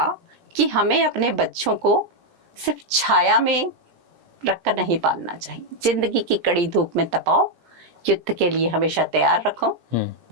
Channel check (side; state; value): left; late; 17 ms